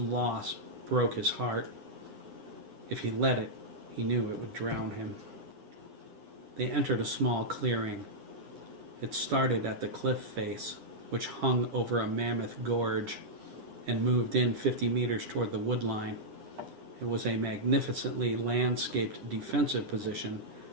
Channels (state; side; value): late; left; 10 ms